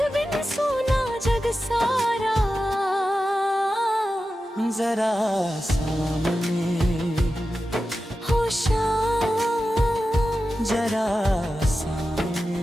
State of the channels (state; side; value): normal; both; correlation 0.93